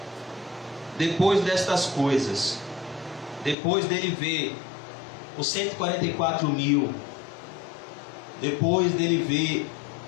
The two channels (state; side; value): drops out; right; at 3.6 s